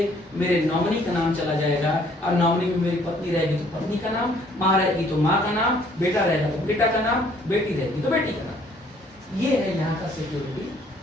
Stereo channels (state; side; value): normal; both; correlation 0.61